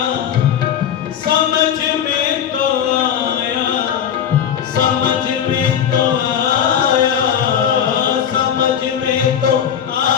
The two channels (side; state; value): right; quieter; 8.8 dB